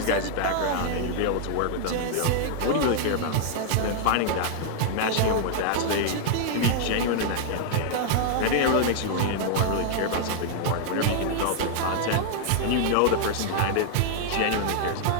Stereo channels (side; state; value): both; different; correlation -0.01